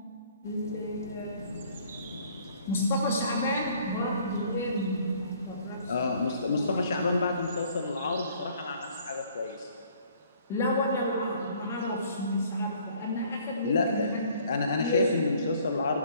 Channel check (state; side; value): inverted; both; correlation -0.58